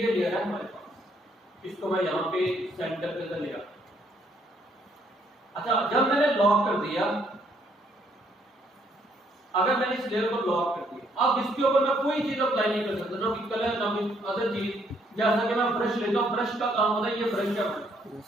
लेयर है हमारे पास, इसको मैं यहाँ पे सेंटर के अंदर ले आता। अच्छा, जब मैंने लॉक कर दिया, अगर मैंने इस लेयर को लॉक कर दिया, अब इसके ऊपर मैं कोई चीज अप्लाई नहीं कर सकता, ना कलर ना अदर चीज। जैसा कि मैं ब्रश लेता हूँ, ब्रश का काम होता है, ये ब्रश का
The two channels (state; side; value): normal; both; correlation 0.69